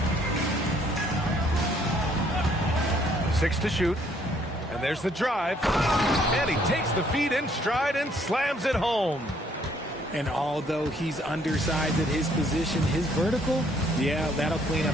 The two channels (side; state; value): both; normal; correlation 0.65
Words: 6 to shoot. And there's the drive. And he takes the feed in stride and slams it home. And although he's undersized at his position, his vertical, yeah, that'll clean up